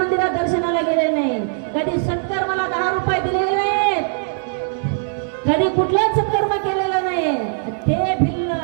दर्शनाला गेले नाही, कधी सत्कर्माला 10 रुपये दिलेले नाहीत, कधी कुठलाच सत्कर्म केलेला नाही. ते भिल्ल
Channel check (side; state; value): left; silent; digital silence